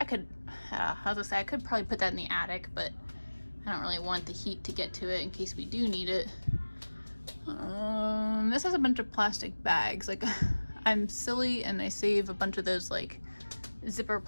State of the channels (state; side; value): inverted; both; correlation -1.00